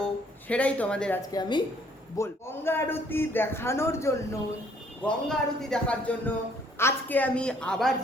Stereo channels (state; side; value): normal; both; correlation 0.63